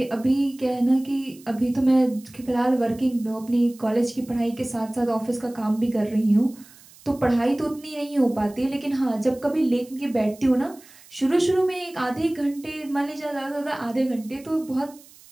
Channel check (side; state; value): right; noise; hiss, 24 dB below the sound